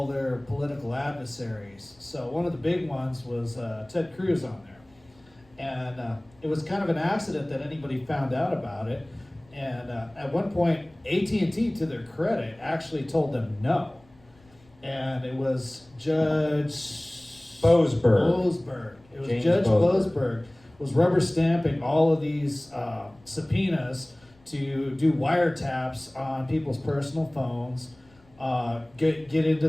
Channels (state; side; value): noise; left; rumble, 30 dB below the sound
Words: their political adversaries. So one of the big ones was Ted Cruz on there. And it was kind of an accident that anybody found out about it. And at one point, AT&T, to their credit, actually told them no. And it was Judge Boasberg. It was James Judge Boasberg Boasberg was rubber stamping all of these subpoenas to do wiretaps on people's personal phones, get into